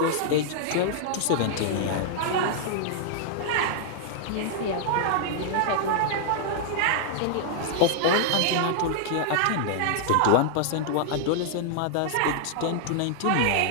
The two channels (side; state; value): both; different; correlation -0.01